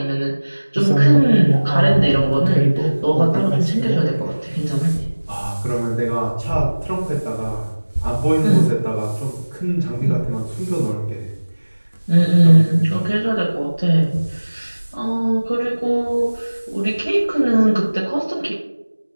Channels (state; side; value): inverted; both; correlation -1.00